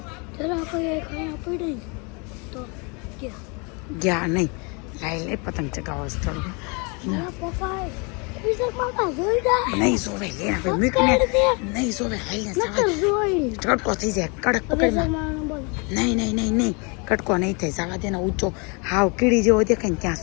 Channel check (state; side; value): quieter; right; 31.8 dB